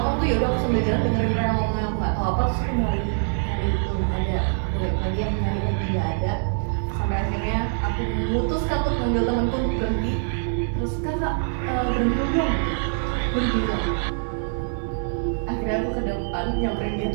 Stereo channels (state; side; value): silent; left; digital silence